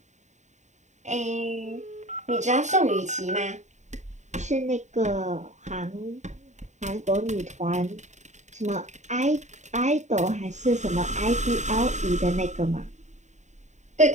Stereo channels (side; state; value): left; late; 0.34 ms